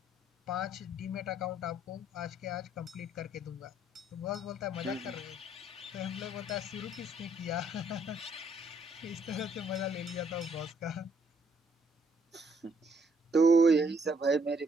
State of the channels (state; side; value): normal; both; correlation 0.68